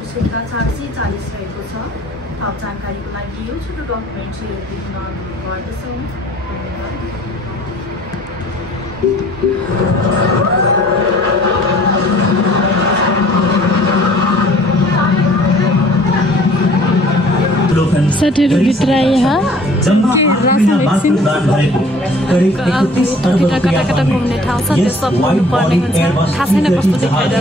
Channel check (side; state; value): both; normal; correlation 0.53